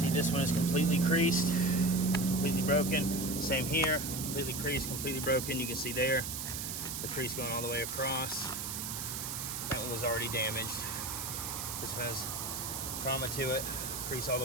this one is completely creased, completely broken. Same here, completely creased, completely broken. You can see there, the crease going all the way across. That one was already damaged. This has trauma to it, crease all the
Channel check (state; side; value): noise; right; hiss, 4 dB below the sound